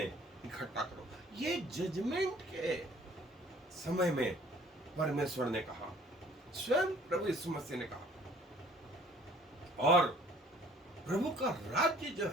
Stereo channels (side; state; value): both; normal; correlation 0.55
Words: इकट्ठा करो। ये जजमेंट के समय में परमेश्वर ने कहा, स्वयं प्रभु यीशु मसीह ने कहा। और प्रभु का राज्य जो